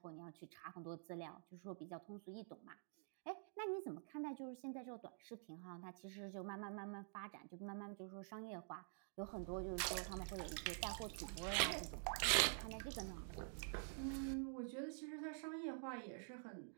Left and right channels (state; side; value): silent; left; digital silence